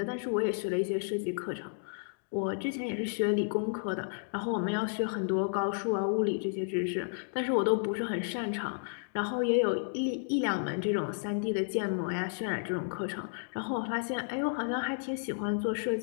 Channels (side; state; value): right; silent; digital silence